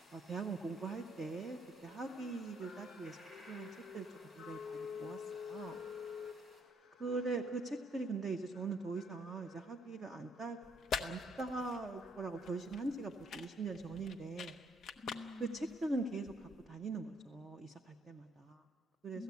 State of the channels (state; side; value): normal; both; correlation 0.68